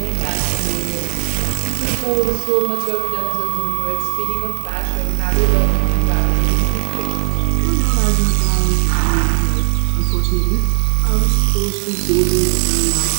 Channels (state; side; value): silent; left; 63 dB below the other